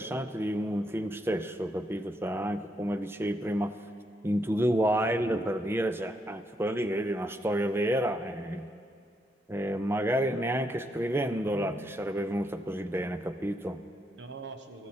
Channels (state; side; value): normal; both; correlation 0.79